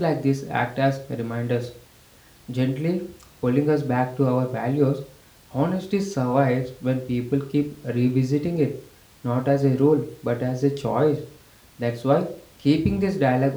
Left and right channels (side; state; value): both; identical; correlation 1.00